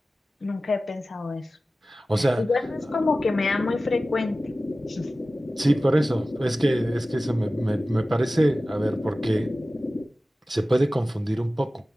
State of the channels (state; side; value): normal; both; correlation 0.96